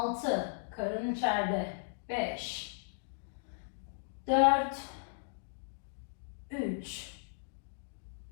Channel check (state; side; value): silent; right; digital silence